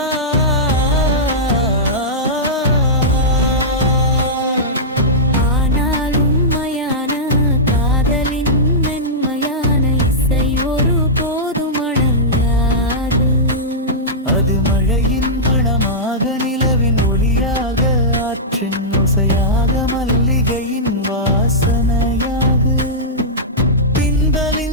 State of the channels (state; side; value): normal; both; correlation -0.12